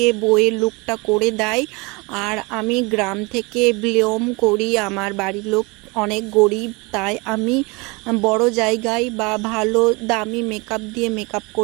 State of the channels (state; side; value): quieter; left; 27.2 dB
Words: বইয়ের লুকটা করে দেয়। আর আমি গ্রাম থেকে বিলং করি, আমার বাড়ির লোক অনেক গরিব, তাই আমি বড় জায়গায় বা ভালো দামি মেকআপ দিয়ে মেকআপ